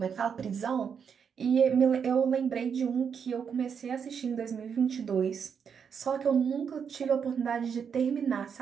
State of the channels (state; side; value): quieter; left; 7.0 dB